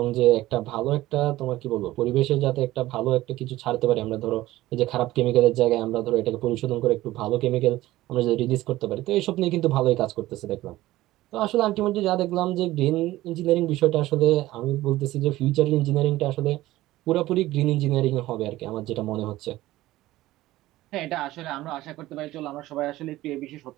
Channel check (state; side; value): quieter; left; 16.6 dB